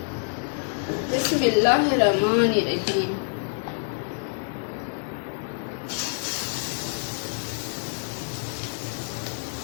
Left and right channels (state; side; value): silent; right; 60 dB below the other